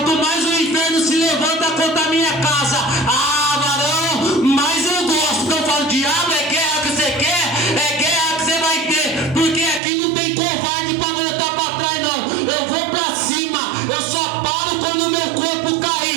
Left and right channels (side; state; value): left; drops out; at 9.8 s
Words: mais o inferno se levanta contra a minha casa, varão, mais eu gosto. Eu falo: diabo, é guerra que você quer? É guerra que você vai ter, porque aqui não tem covarde para voltar para trás, não. Eu vou para cima, eu só paro quando o meu corpo